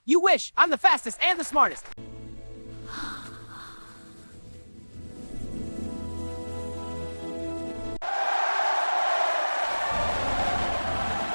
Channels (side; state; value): both; inverted; correlation -1.00